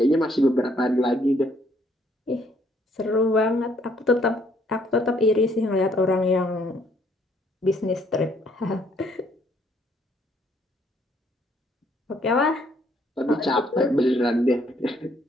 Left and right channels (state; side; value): normal; both; correlation 0.66